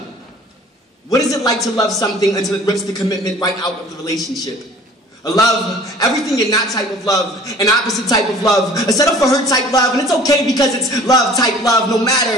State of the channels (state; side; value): normal; both; correlation 0.48